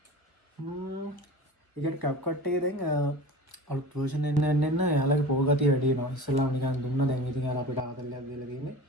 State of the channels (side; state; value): right; late; 1.4 ms